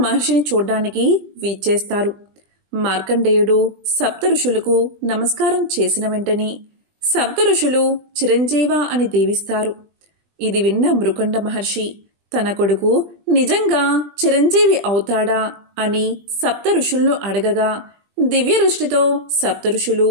మహర్షిని చూడ్డానికి వీచేస్తారు. మార్కండేయుడు సప్త ఋషులకు నమస్కారం చేసిన వెంటనే సప్త ఋషులు చిరంజీవ అని దీవిస్తారు. ఇది విన్న మృకుండ మహర్షి తన కొడుకు నిజంగా చిరంజీవి అవుతాడా అని సప్త ఋషులను అడగగా దివ్య దృష్టితో సప్త ఋషులు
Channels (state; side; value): late; left; 20 ms